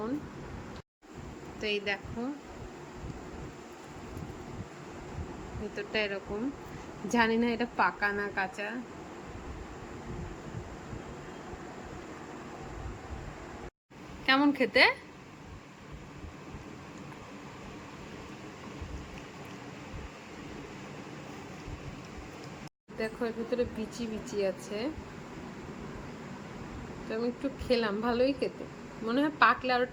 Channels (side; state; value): both; identical; correlation 1.00